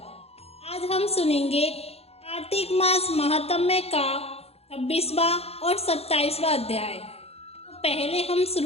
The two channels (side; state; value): right; late; 0.29 ms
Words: आज हम सुनेंगे कार्तिक मास महात्म्य का 26वां और 27वां अध्याय। तो पहले हम